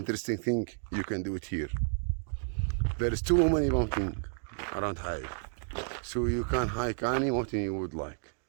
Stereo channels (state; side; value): silent; left; digital silence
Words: things you can do it here. There is too many mountains around Haya, so you can hike any mountain you would like.